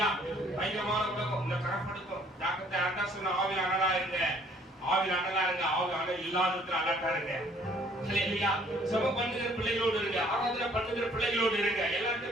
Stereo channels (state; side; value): normal; both; correlation 0.60